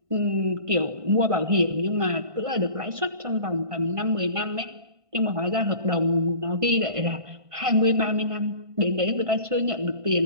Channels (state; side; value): late; left; 1.5 ms